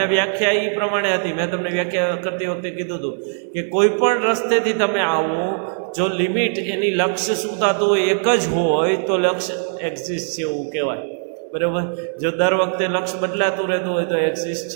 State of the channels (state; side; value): silent; left; 65 dB below the other